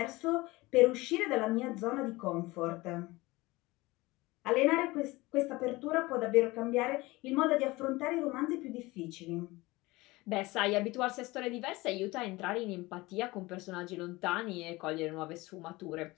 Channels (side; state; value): right; quieter; 21.2 dB